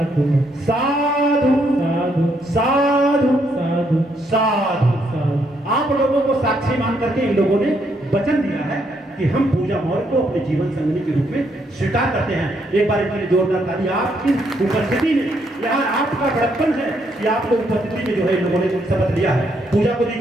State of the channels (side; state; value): both; normal; correlation 0.74